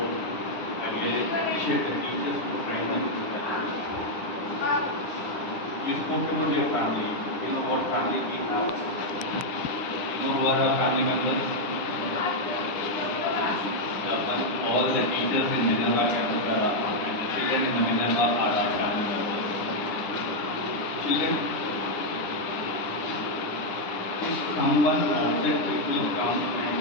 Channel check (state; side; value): late; right; 9.9 ms